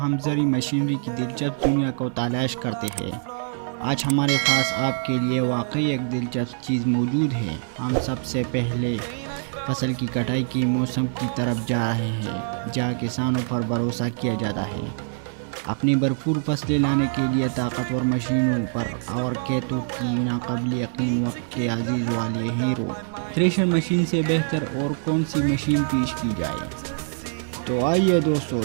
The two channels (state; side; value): silent; left; 62 dB below the other